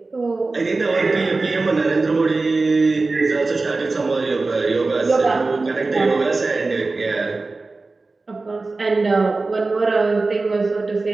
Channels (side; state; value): left; quieter; 3.6 dB